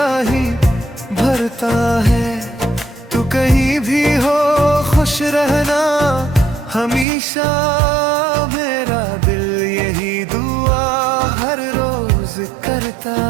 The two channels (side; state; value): left; drops out; at 7.1 s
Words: भरता है। तू कहीं भी हो खुश रहना हमेशा, मेरा दिल यही दुआ हर रोज करता